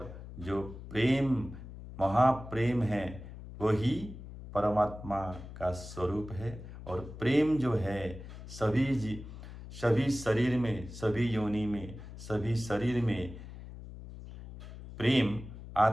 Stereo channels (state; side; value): noise; left; hum, 13 dB below the sound